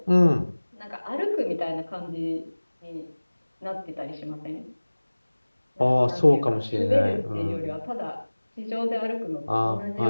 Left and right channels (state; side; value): inverted; both; correlation -1.00